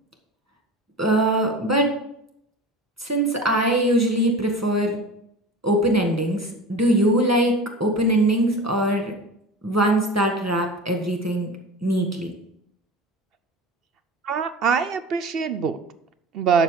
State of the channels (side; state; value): both; normal; correlation 0.34